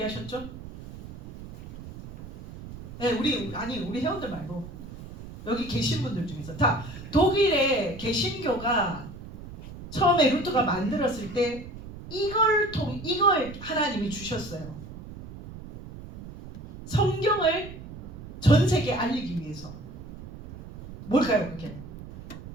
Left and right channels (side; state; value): right; noise; rumble, 14 dB below the sound